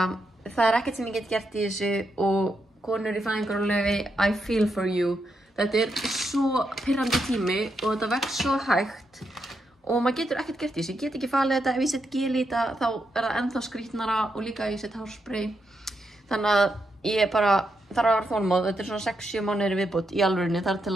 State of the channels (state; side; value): normal; both; correlation 0.82